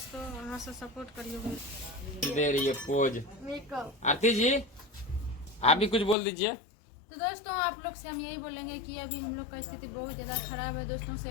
वहाँ से सपोर्ट करिए। दे रही है पोज आरती जी, आप भी कुछ बोल दीजिए। तो दोस्तों आप लोग से हम यही बोलेंगे कि अभी हम लोग का स्थिति बहुत ज़्यादा खराब है दोस्तों,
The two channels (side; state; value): right; drops out; at 6.2 s